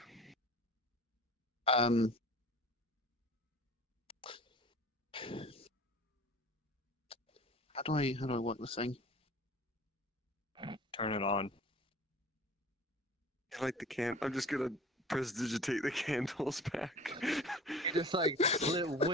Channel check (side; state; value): both; normal; correlation 0.42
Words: How do I work this thing? Turn it on. I like the I'm just gonna prestidigitate the candles back. You just like